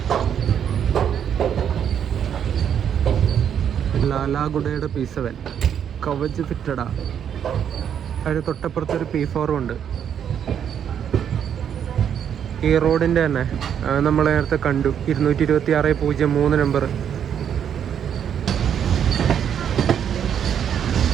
ലാലാഗുഡയുടെ P7 കവച് ഫിറ്റഡാ. അതിന് തൊട്ടപ്പുറത്തൊരു P4 ഉണ്ട്. ഈ റോഡിൻ്റെ തന്നെ നമ്മൾ നേരത്തെ കണ്ടു 226/03 നമ്പർ.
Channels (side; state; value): left; quieter; 8.7 dB